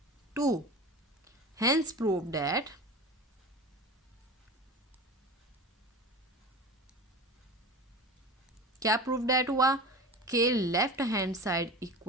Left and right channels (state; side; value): normal; both; correlation 0.32